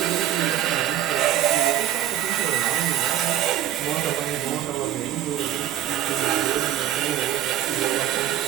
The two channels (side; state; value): left; quieter; 11.9 dB